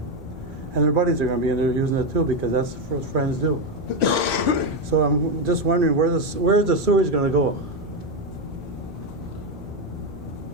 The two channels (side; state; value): both; normal; correlation 0.08